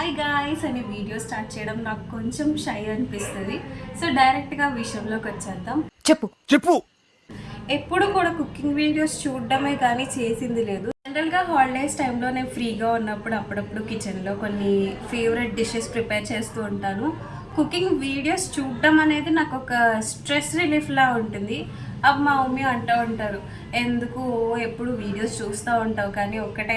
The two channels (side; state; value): both; identical; correlation 1.00